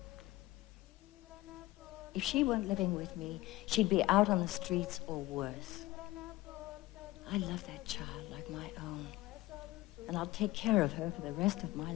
If she weren't living with me, she'd be out on the streets or worse. I love that child like my own, and I'll take care of her for the rest of my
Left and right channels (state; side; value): quieter; right; 18.5 dB